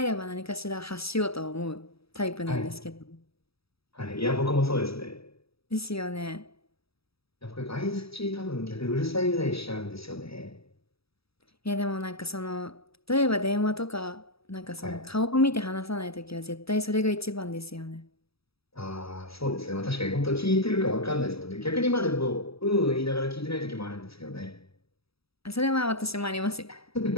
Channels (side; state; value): right; late; 0.77 ms